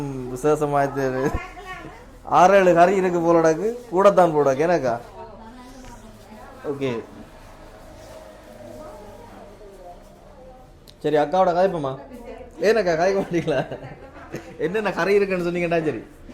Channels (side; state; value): both; identical; correlation 1.00